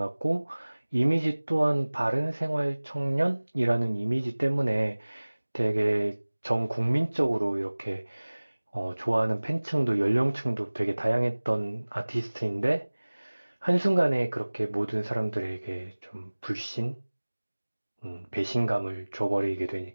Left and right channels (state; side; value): inverted; both; correlation -1.00